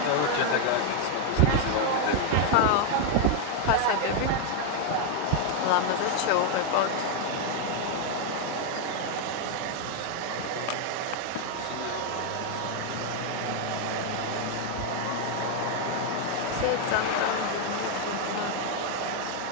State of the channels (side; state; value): both; different; correlation 0.01